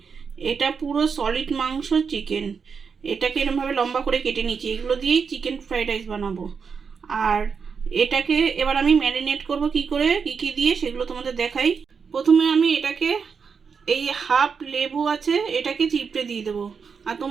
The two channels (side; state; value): left; quieter; 5.9 dB